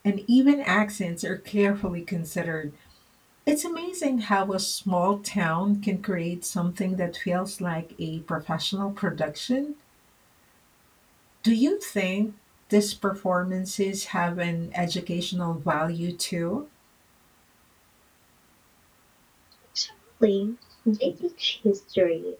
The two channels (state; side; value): identical; both; correlation 1.00